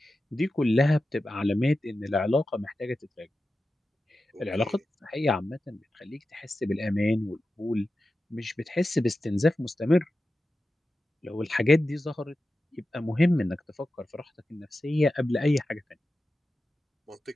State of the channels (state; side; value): normal; both; correlation 0.92